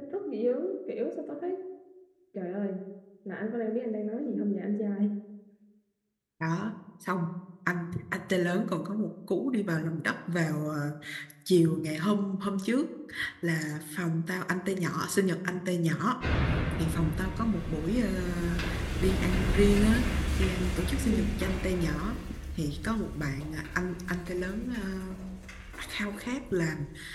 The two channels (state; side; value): identical; both; correlation 1.00